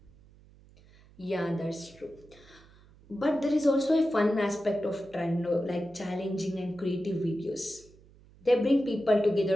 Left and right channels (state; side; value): noise; right; hum, 26 dB below the sound